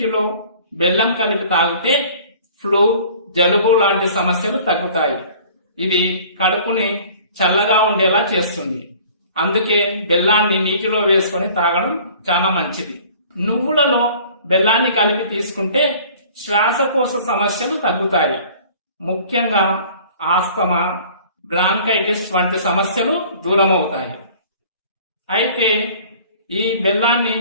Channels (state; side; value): inverted; both; correlation -0.49